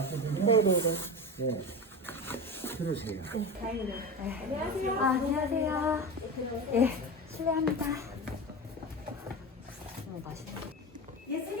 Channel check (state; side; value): normal; both; correlation 0.24